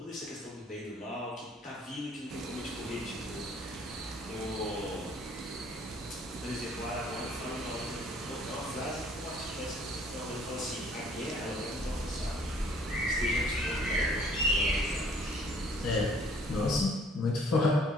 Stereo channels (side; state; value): both; normal; correlation 0.59